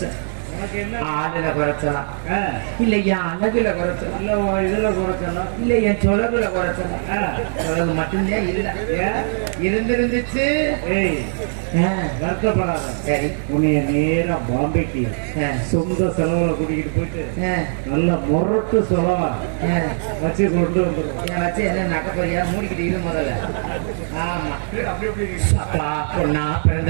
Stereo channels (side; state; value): left; silent; digital silence